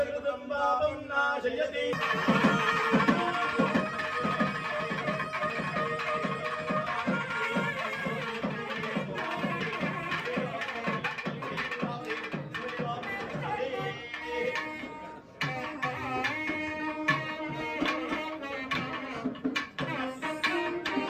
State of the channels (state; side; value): identical; both; correlation 1.00